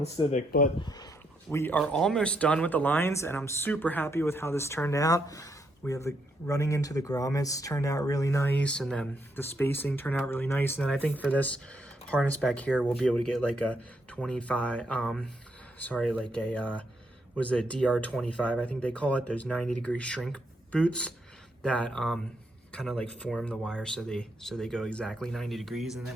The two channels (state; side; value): normal; both; correlation 0.77